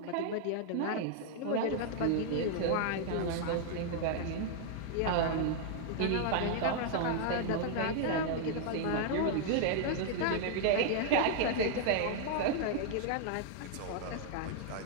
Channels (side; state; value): both; different; correlation 0.00